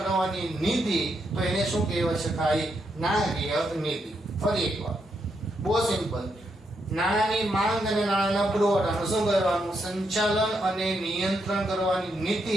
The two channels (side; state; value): both; normal; correlation 0.80